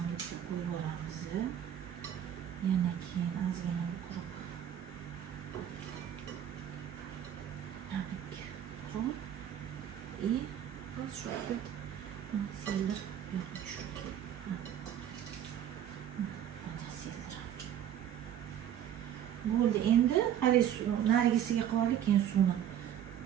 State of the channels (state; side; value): quieter; left; 10.1 dB